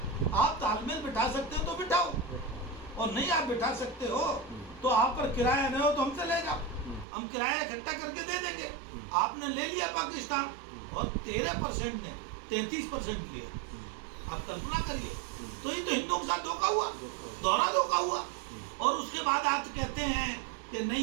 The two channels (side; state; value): left; drops out; at 7.1 s